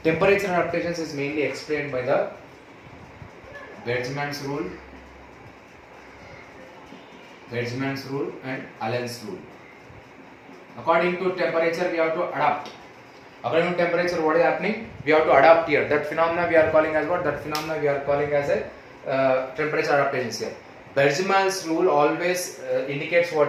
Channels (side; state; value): both; identical; correlation 1.00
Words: Temperature adaptations is mainly explained by the Weizmann's rule and Allen's rule. According to temperature, we have to adapt. According to temperature, what is happening? We have to adapt here. That phenomena we are calling as what? That phenomena we are calling as a temperature adaptations here. Weizmann's rule always indicates